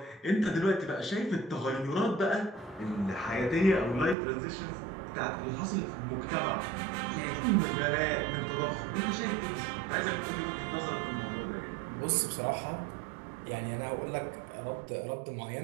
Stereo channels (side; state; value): left; drops out; at 4.2 s